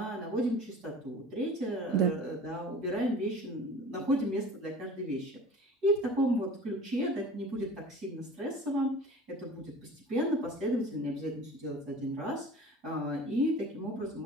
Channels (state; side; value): normal; both; correlation 0.41